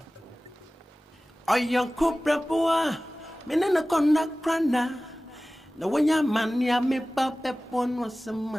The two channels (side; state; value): both; normal; correlation 0.97